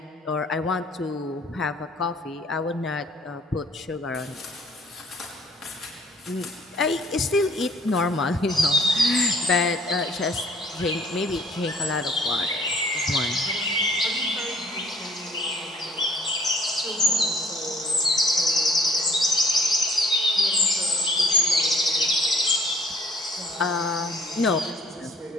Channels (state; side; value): normal; both; correlation 0.56